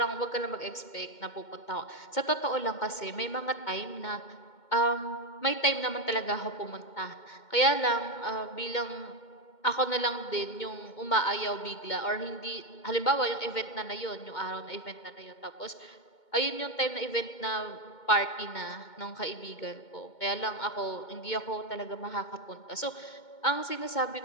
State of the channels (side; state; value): right; late; 2.2 ms